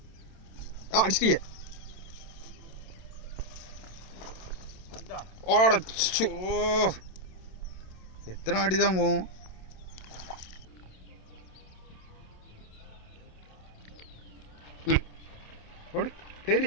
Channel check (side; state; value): right; late; 27 ms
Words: அடிச்சிட்டியே. எத்தனை அடி தான் போகும்?